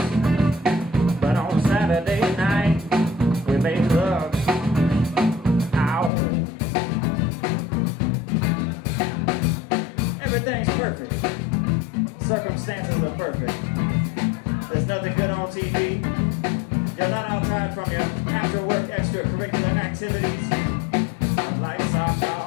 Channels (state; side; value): drops out; right; at 6.1 s